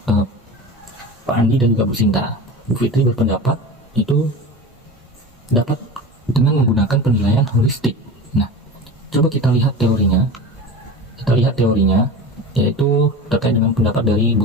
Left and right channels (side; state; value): both; normal; correlation 0.31